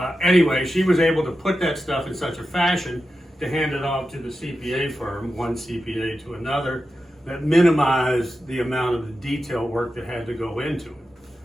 Anyway, she was able to put that stuff in such a fashion to hand it off to the CPA firm, one CPA to another, that minimized the amount of the detail work that had to go into it,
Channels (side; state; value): both; normal; correlation 0.91